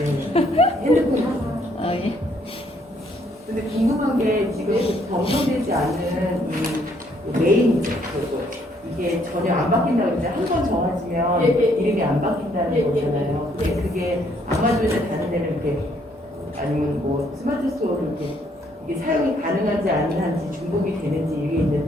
핸드폰. 예. 근데 궁금한 게 지금 검토되지 않은 이 메인이죠. 이게 전혀 안 바뀐다고 했는데 한 번 정해지면 예, 예. 이름이 안 바뀐다는 예, 예, 거잖아요. 예. 근데 그게 아마존에 다른 데는 이렇게 아니면 뭐 스마트 스토어로 이렇게 이게 사용이 가능한지 아닌지 중복이 되는지 이게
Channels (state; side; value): normal; both; correlation 0.68